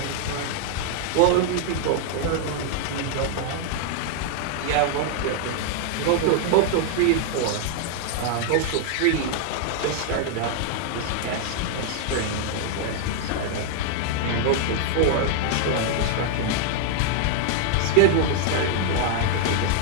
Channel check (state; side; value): different; both; correlation 0.00